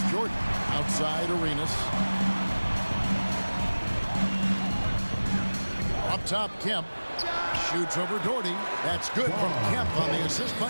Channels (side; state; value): both; inverted; correlation -1.00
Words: Jordan. Outside Arenas. Up top, Kemp. Shoots over Doherty. That's good from Kemp on the assist